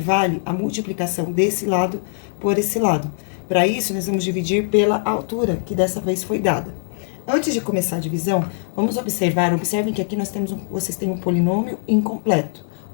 a multiplicação desse lado por esse lado. Para isso, nós vamos dividir pela altura, que dessa vez foi dada. Antes de começar a divisão, vamos observem que aqui vocês têm um polinômio incompleto.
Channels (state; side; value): silent; right; digital silence